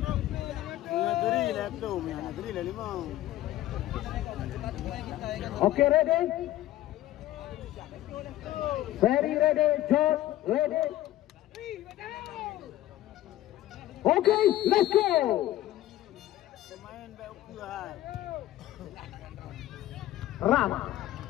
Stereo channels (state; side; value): quieter; right; 14.4 dB